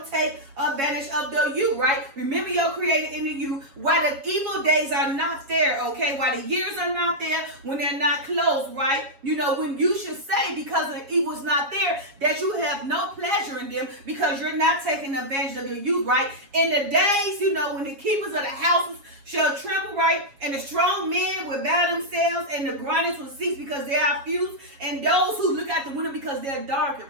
take advantage of the youth, right? Remember your creator in the youth while the evil days are not there, okay? While the years are not there, when they're not close, right? When you should say, because the evil's not there, that you have no pleasure in them, because you're not taking advantage of your youth, right? In the days, when the keepers of the houses shall tremble, right? And the strong men will bow themselves, and the grinders will cease, because they are few, and those who look out the window because they're darkened,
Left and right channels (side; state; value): left; late; 7.3 ms